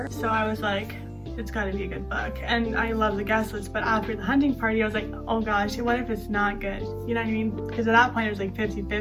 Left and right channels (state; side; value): identical; both; correlation 1.00